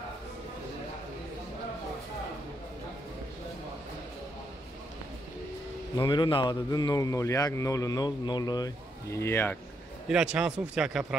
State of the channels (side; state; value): both; normal; correlation 0.77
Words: номеру 92 001 0001. Ира чанд сум фтяка